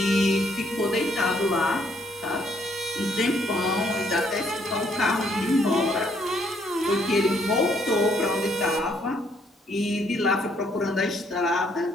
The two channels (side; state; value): both; normal; correlation 0.69